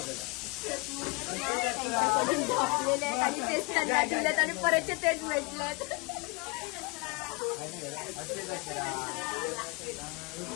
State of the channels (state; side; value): quieter; right; 28.7 dB